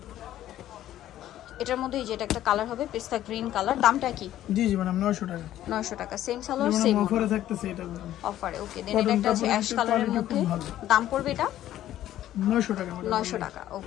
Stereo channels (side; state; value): right; quieter; 12.8 dB